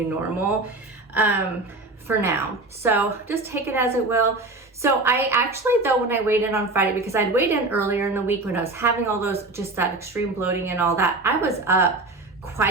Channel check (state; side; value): quieter; left; 3.1 dB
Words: normal for now. So just take it as it will. So I actually, though, when I weighed in on Friday, because I'd weighed in earlier in the week when I was having all those, just that extreme bloating and all that, I was up